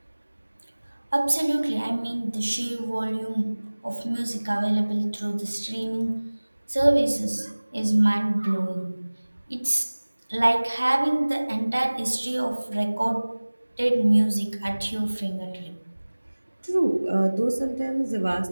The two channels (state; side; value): inverted; both; correlation -1.00